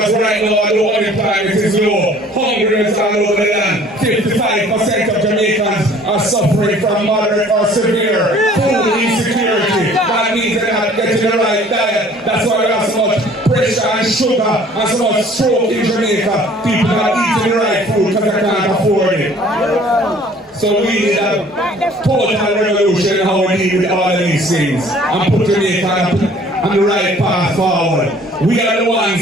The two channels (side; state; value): both; normal; correlation 0.53